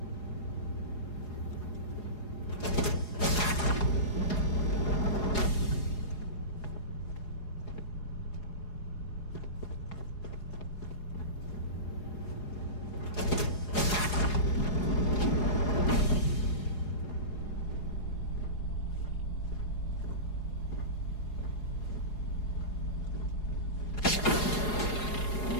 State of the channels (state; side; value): late; right; 4.8 ms